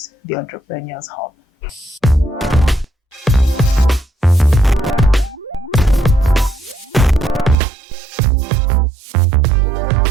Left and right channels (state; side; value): drops out; left; at 7.6 s